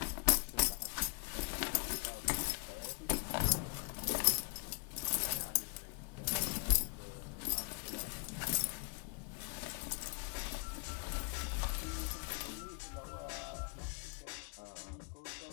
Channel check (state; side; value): quieter; right; 39.7 dB